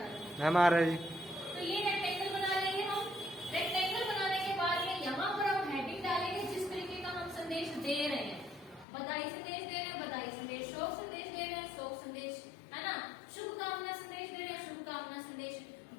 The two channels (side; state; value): right; drops out; at 8.8 s